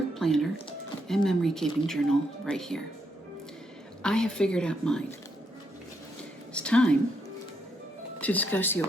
planner and memory keeping journal right here. I have figured out mine. It's time to discuss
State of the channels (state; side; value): normal; both; correlation 0.78